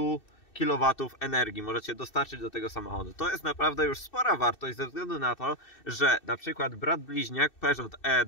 kW energii możecie dostarczyć do tego samochodu. To jest naprawdę już spora wartość ze względu na to, że na przykład brat bliźniak Peugeot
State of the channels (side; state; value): right; late; 2.6 ms